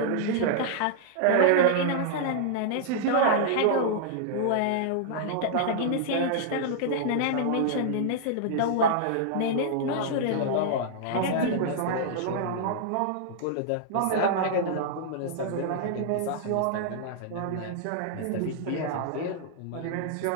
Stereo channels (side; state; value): both; different; correlation -0.01